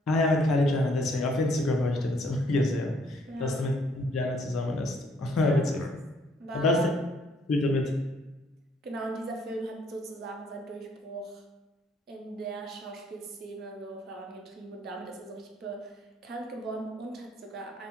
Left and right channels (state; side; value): normal; both; correlation 0.66